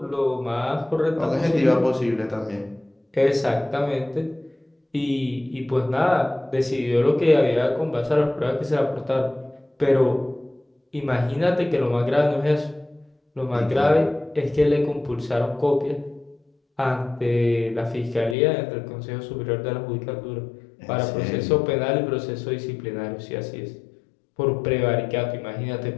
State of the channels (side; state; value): right; drops out; at 18.4 s